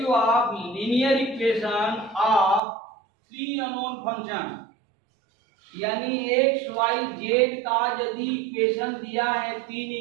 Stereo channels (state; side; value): drops out; left; at 2.6 s